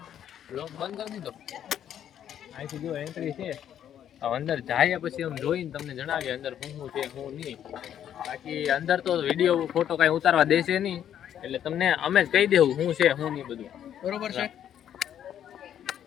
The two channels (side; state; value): right; quieter; 10.0 dB